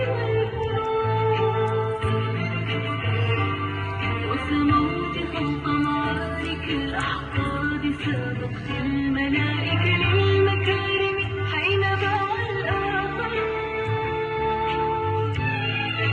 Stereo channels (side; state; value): both; identical; correlation 1.00